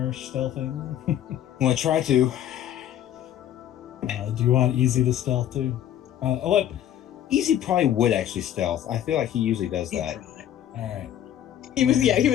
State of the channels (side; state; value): right; quieter; 11.1 dB